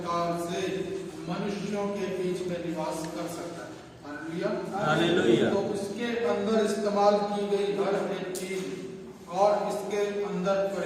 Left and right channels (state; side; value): identical; both; correlation 1.00